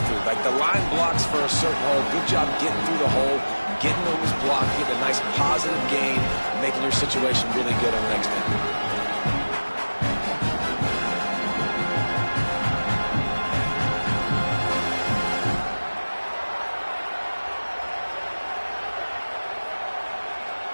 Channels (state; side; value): inverted; both; correlation -1.00